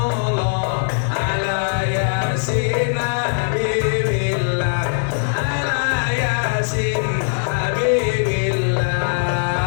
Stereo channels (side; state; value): right; silent; 56 dB below the other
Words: ala yasin habibillah. Ala yasin habibillah.